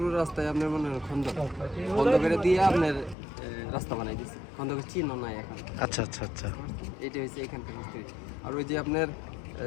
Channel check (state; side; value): drops out; right; at 3.2 s